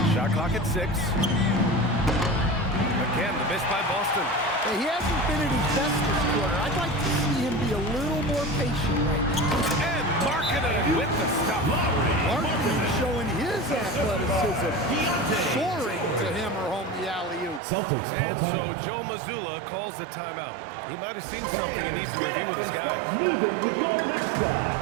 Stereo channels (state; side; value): drops out; left; at 17.6 s